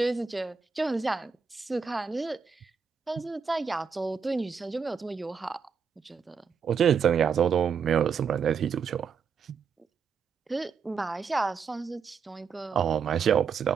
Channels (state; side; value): quieter; left; 6.2 dB